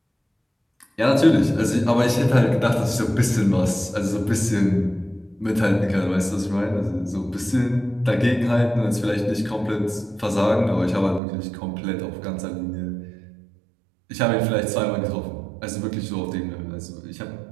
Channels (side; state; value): left; drops out; at 11.2 s